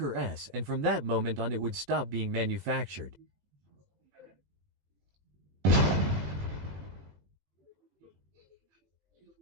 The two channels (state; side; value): late; left; 19 ms